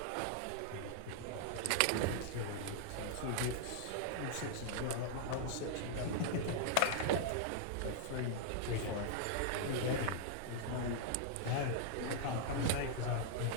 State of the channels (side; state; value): both; different; correlation -0.01